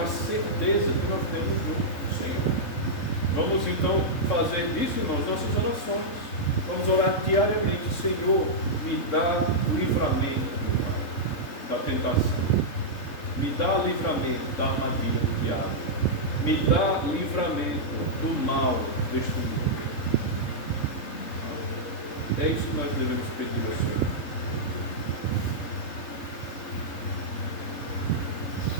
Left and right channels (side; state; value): right; late; 3.7 ms